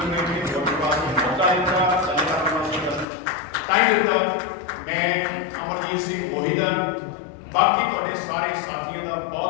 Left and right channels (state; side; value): drops out; right; at 3.1 s